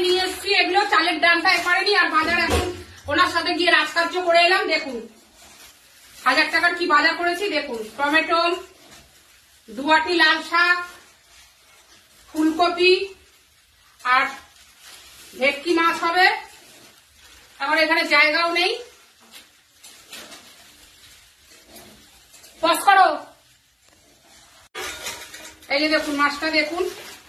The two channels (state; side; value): identical; both; correlation 1.00